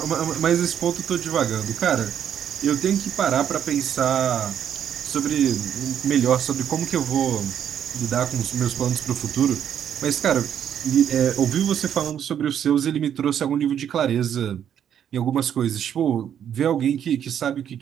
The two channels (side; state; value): left; quieter; 9.3 dB